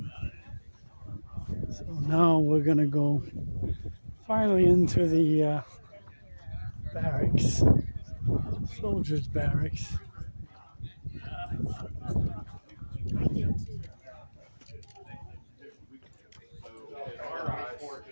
So now we're gonna go finally into the barracks, soldiers' barracks.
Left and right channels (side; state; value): both; inverted; correlation -1.00